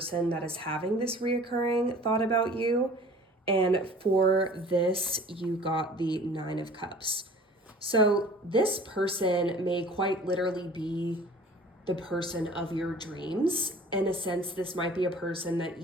that is having this reoccurring thought about you. And for this, you got the 9 of Cups. So this person may quite literally be the person of your dreams. In a sense, this might be a person that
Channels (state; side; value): normal; both; correlation 0.46